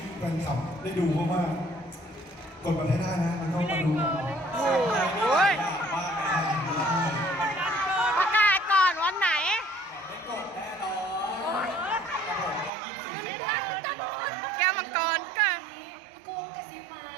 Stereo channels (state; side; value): drops out; left; at 12.7 s